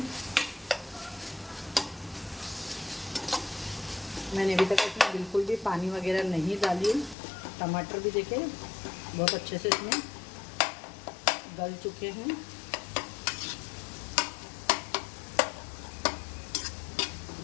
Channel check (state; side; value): drops out; right; at 7.2 s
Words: मैंने अभी तक इसमें बिल्कुल भी पानी वगैरह नहीं डाली। टमाटर भी देखिए बहुत अच्छे से इसमें गल चुके हैं।